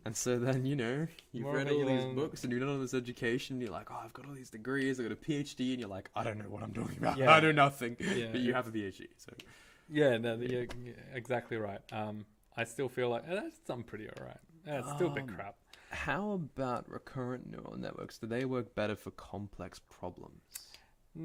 And so then, you've More read all these revealing. books and you've done all this education, and you're like, oh, I've got all these degrees, I've got a PhD, and you're like, I don't know what I'm talking about. Yeah. I know nothing. Yeah. But you have a PhD, so. Yeah, no, you're exactly right. I still feel like I'm pretty alright. It's still a bit crap. How about recurrent neural networks? Do they work better for complex problems?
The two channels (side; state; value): both; identical; correlation 1.00